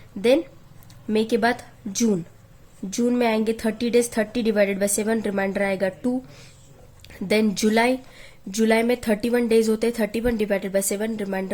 देन मई के बाद जून में आएंगे 30 डेज, 30 डिवाइडेड बाय 7, रिमाइंडर आएगा 2। देन जुलाई में 31 डेज होते हैं, 31 डिवाइडेड बाय 7,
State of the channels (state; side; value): identical; both; correlation 1.00